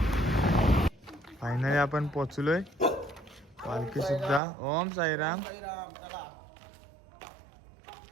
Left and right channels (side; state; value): left; drops out; at 4.4 s